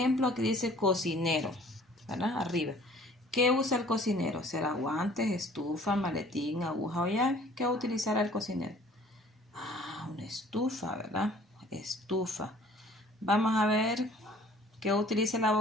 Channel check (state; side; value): normal; both; correlation 0.53